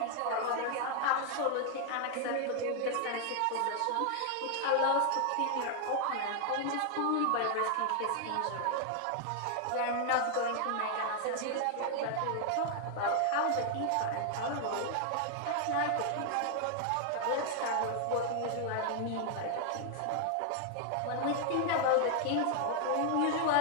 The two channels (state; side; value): different; both; correlation -0.01